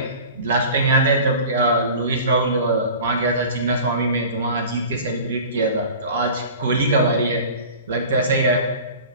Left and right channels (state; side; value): inverted; both; correlation -0.40